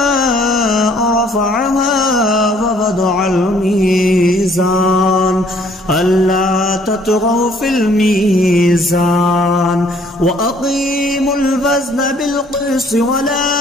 رفعها ووضع الميزان ألا تطغوا في الميزان وأقيموا الوزن بالقسط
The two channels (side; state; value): both; normal; correlation 0.61